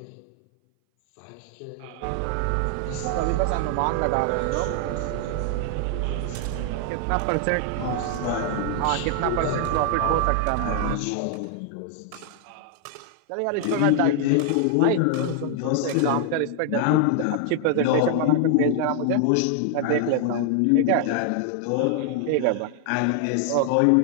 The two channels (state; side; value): different; both; correlation 0.00